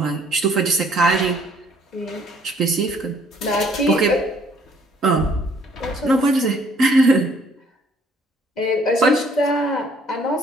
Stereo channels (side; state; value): both; normal; correlation 0.62